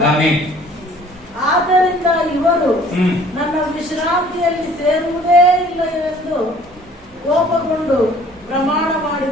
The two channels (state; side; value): normal; both; correlation 0.54